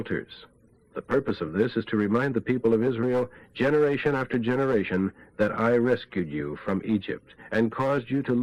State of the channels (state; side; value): identical; both; correlation 1.00